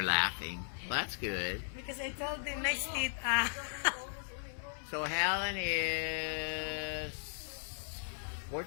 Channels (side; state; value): right; silent; 53 dB below the other